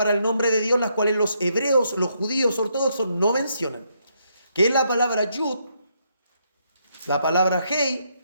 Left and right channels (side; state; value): both; inverted; correlation -0.75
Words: el nombre de Dios, las cuales los hebreos, los judíos ortodoxos no mencionan, que es la palabra Yud, la palabra Hei,